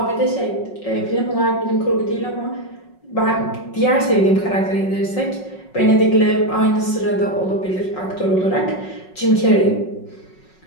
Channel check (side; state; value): right; late; 5.4 ms